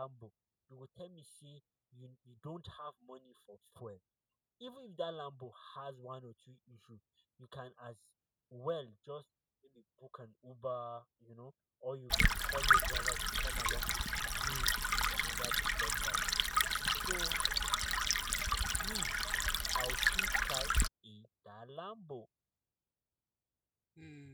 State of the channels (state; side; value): identical; both; correlation 1.00